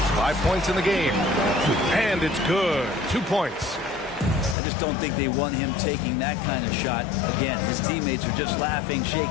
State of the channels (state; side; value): drops out; right; at 4.5 s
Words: 5 points in the game. And it's good. 2 points. I just don't think they want him taking that kind of shot. Again, his teammates are just laughing,